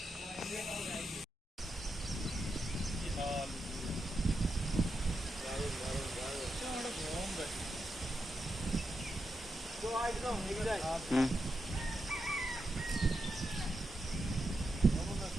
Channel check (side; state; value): both; normal; correlation 0.86